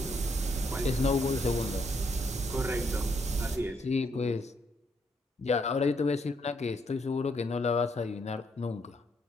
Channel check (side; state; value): both; normal; correlation 0.74